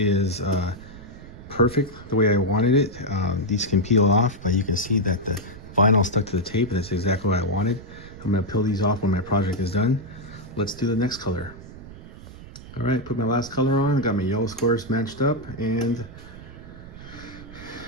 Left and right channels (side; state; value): right; noise; rumble, 16 dB below the sound